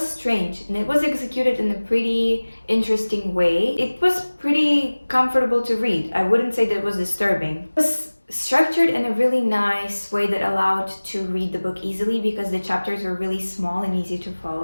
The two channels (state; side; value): inverted; both; correlation -1.00